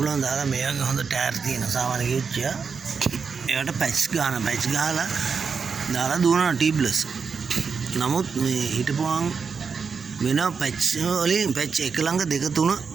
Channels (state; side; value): quieter; left; 5.7 dB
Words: දාලා මේකේ හොඳ ටයර් තියෙන සාමාන්‍ය කිව්චිය ඒකට පැච් ගහලා දාලා දුවනවා ටියුබ්ලස්. නමුත් මේ හිටපුවාන් වෙන පැච් වලින් පැච් එක ළඟ දෙක තුන